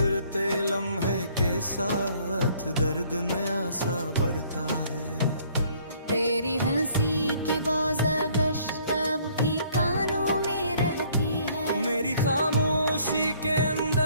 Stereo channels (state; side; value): inverted; both; correlation -0.61